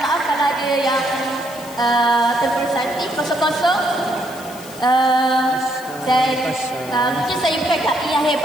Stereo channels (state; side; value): noise; left; hiss, 17 dB below the sound